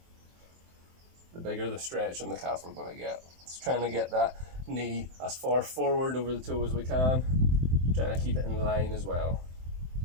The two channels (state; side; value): late; left; 23 ms